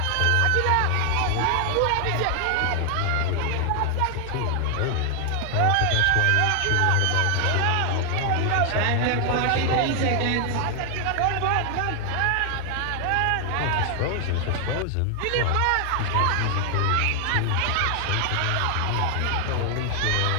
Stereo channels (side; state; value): both; different; correlation 0.00